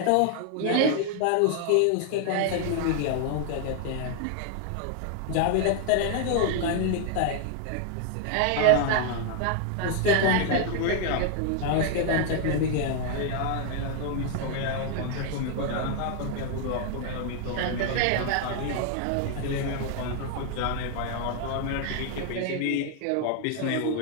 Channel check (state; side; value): different; both; correlation 0.00